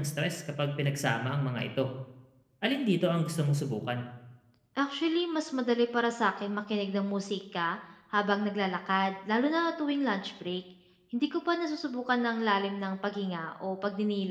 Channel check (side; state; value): both; identical; correlation 1.00